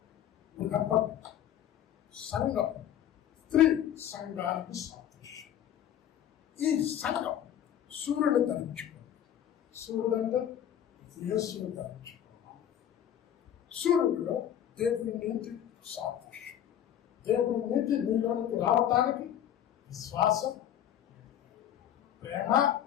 సంఘం స్త్రీ సంఘానికి సాదృశ్యం. ఈ సంఘం సూర్యుని ధరించుకోవాలి. సూర్యుడు అంటే యేసుని ధరించుకోవాలి. సూర్యుడిలో దేవుని నీతి సాదృశ్యం. దేవుని నీతి నీలోనికి రావటానికి విశ్వాసం, ప్రేమ,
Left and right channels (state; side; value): quieter; right; 10.4 dB